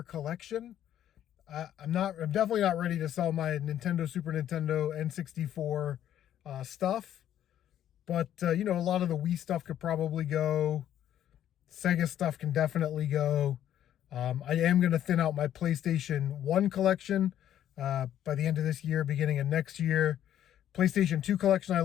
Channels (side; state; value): right; quieter; 11.1 dB